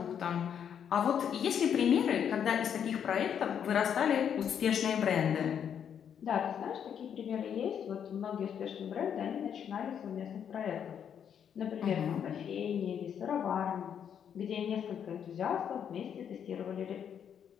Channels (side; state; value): right; quieter; 8.4 dB